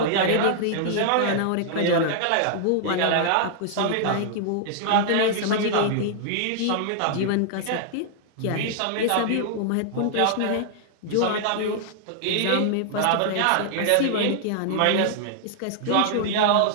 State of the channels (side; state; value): both; different; correlation -0.01